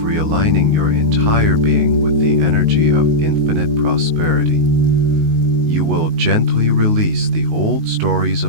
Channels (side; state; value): left; late; 19 ms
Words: your entire being with the energy of infinite prosperity. You will gently release the old stories